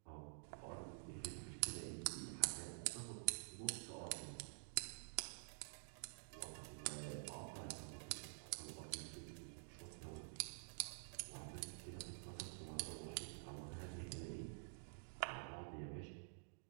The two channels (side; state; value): left; silent; digital silence